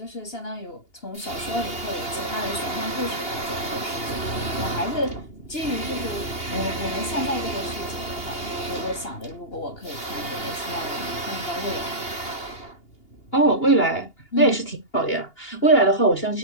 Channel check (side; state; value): right; late; 2.8 ms